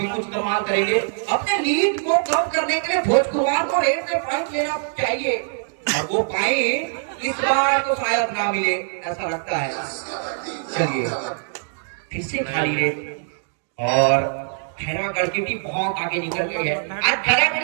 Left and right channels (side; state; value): left; silent; digital silence